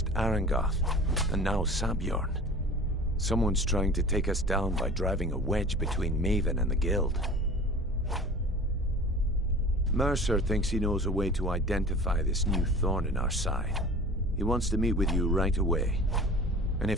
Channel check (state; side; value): normal; both; correlation 0.40